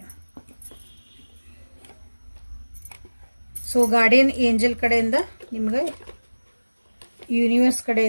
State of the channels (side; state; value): both; inverted; correlation -1.00